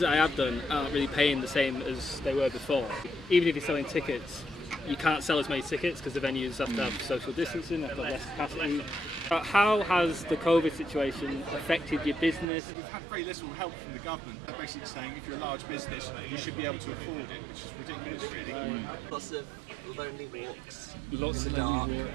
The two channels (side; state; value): left; drops out; at 12.5 s